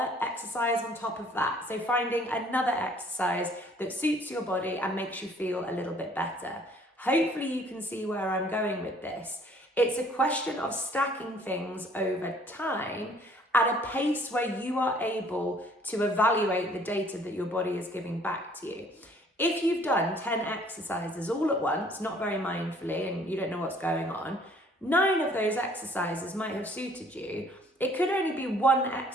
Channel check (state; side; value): normal; both; correlation 0.58